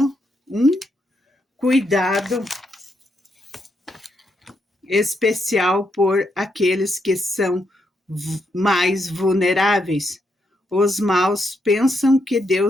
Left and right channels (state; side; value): normal; both; correlation 0.79